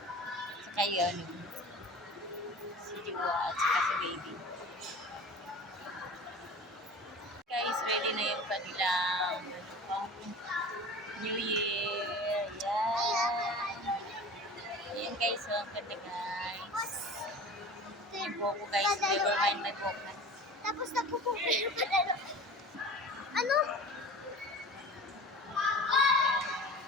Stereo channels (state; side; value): normal; both; correlation 0.37